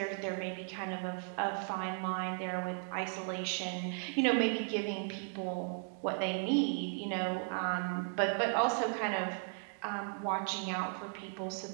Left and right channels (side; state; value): left; silent; 54 dB below the other